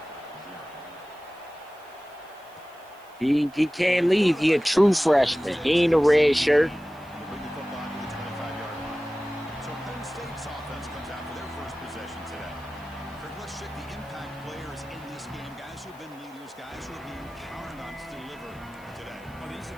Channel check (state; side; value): noise; right; hiss, 28 dB below the sound